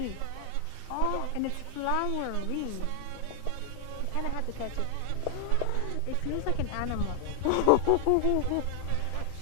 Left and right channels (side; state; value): both; different; correlation 0.00